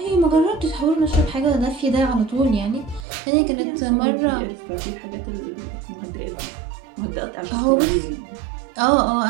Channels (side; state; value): left; drops out; at 3.1 s